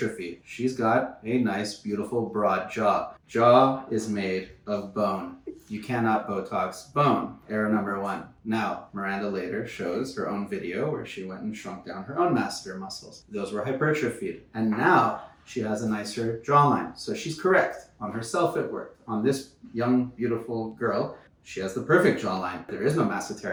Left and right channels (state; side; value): identical; both; correlation 1.00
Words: She's got a nice, beautiful, broad jaw. Jaw is made of bone. You cannot Botox bone. Error number 1. Now, Miranda later shows her own video where she went and shrunk down her own masseter muscles. Those were hypertrophied. And now she has a nicer jawline. So she's correct. On herself it worked. On this young, beautiful girl, she has the perfect jawline. There is no